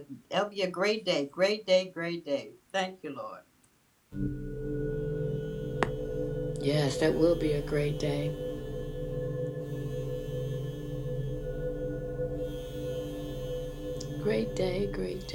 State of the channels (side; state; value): both; identical; correlation 1.00